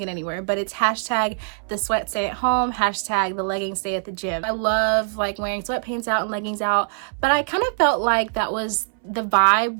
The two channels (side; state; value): left; silent; 64 dB below the other